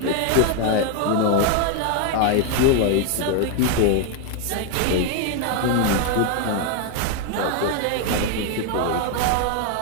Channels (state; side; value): different; both; correlation 0.01